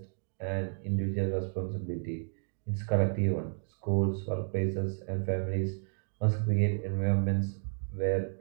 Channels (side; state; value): left; silent; 56 dB below the other